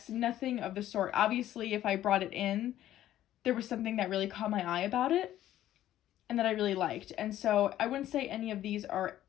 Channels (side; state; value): right; quieter; 12.8 dB